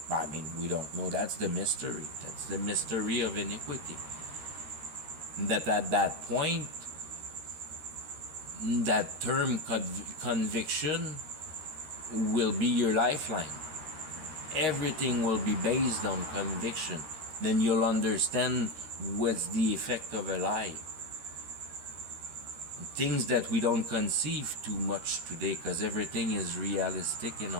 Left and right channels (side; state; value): left; late; 13 ms